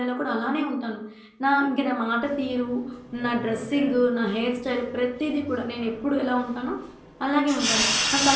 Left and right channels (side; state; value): both; identical; correlation 1.00